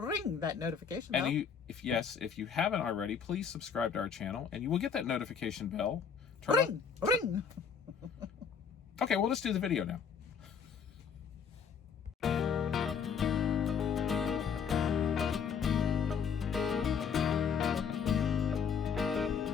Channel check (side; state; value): right; quieter; 6.7 dB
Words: that notification bell. And if you haven't already, please subscribe to our channel, and you will get that notification bell. Ring. Okay, well, let's do the video now.